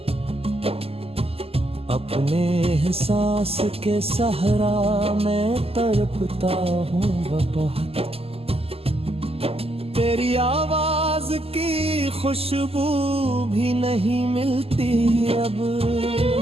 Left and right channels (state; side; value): late; left; 0.29 ms